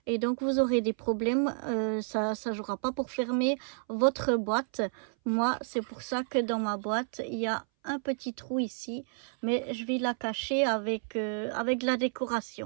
Et donc vous aurez des problèmes, ça ne jouera pas pour fermer votre boîte. Moi, c'est pour ça que dans ma boîte, il y a un petit trou ici. Mais je vais la cacher avec la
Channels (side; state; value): left; silent; 58 dB below the other